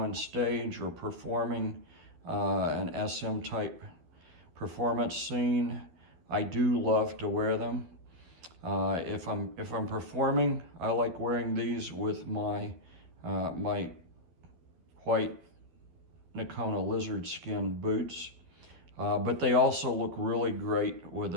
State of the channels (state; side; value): late; left; 12 ms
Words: stage or performing an SM type performance scene, I do love to wear them. If I'm performing, I like wearing these with my my white Nakona lizard skin boots. But they also look really great with